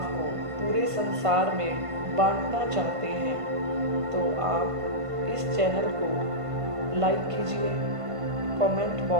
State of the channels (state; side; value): late; left; 1.5 ms